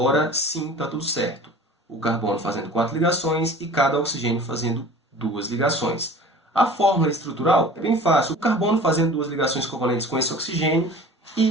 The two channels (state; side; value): normal; both; correlation 0.42